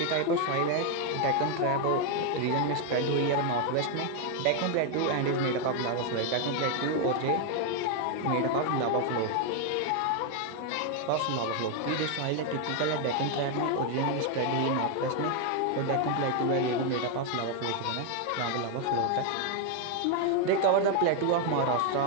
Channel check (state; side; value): different; both; correlation 0.01